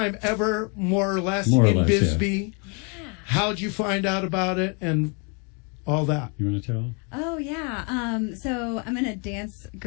ever, more or less, in Bisbee. Yeah. How'd you find out about it and all that? You want to tell? Oh, yeah. So I'm in a dance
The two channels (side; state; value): right; quieter; 35.5 dB